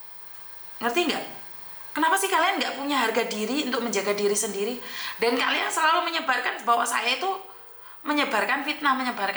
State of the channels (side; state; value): both; identical; correlation 1.00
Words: Ngerti nggak? Kenapa sih kalian nggak punya harga diri untuk menjaga diri sendiri? Dan kalian selalu menyebarkan bahwa saya itu menyebarkan fitnah.